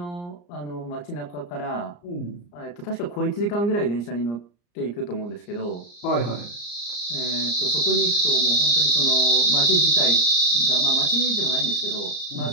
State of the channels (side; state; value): right; late; 34 ms